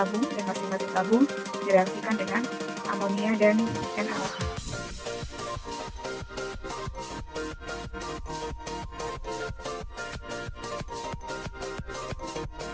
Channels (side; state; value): both; identical; correlation 1.00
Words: dan masing-masing tabung direaksikan dengan amonia dan NaOH.